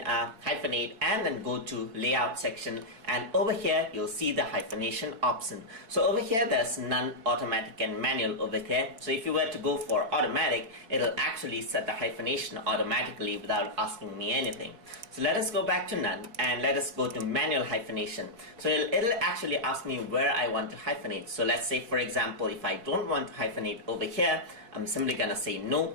and then go to layout section, and over here you'll see the hyphenation option. So over here there's none, automatic and manual over here. So if you were to go for automatic, it'll actually set the hyphenation automatically without asking me anything. So let us go back to none and let us go to manual hyphenation. So it'll actually ask me where I want to hyphenate. So let's say, for example, if I don't want to hyphenate over here, I'm simply gonna say no,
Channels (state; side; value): late; left; 4.6 ms